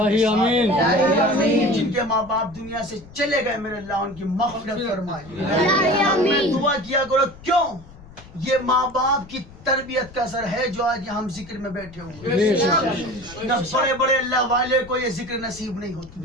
آمین. جن کے ماں باپ دنیا سے چلے گئے میرے اللہ ان کی مغفرت فرمائے. میں دعا کیا کرو. کیوں؟ یہ ماں باپ کی تربیت کا اثر ہے جو آج ہم ذکر میں بیٹھے ہوئے. نہ بڑے بڑے اللہ والے کو یہ ذکر نصیب نہیں ہوتی.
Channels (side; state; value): left; noise; rumble, 20 dB below the sound